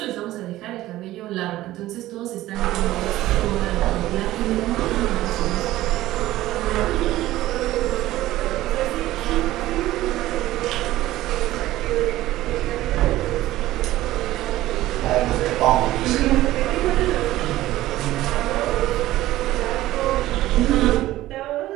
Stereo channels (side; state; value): left; quieter; 15.7 dB